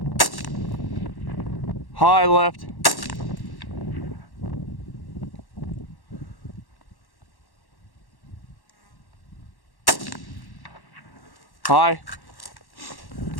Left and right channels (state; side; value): late; right; 1.1 ms